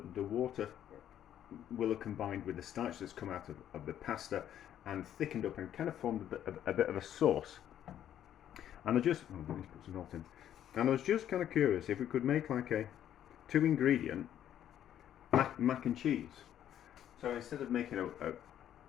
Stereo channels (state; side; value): quieter; right; 10.7 dB